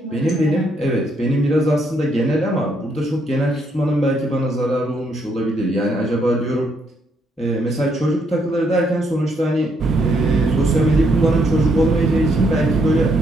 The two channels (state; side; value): normal; both; correlation 0.73